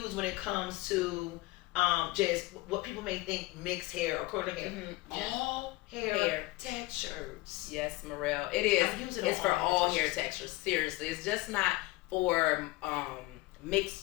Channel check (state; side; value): quieter; right; 20.4 dB